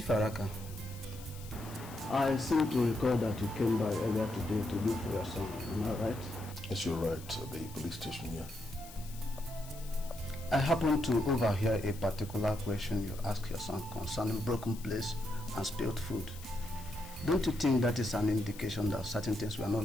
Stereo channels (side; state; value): left; noise; hiss, 17 dB below the sound